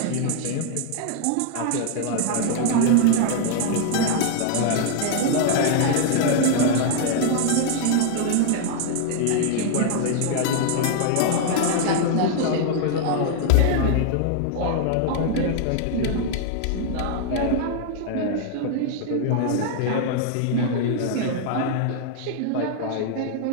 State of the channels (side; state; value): both; different; correlation 0.00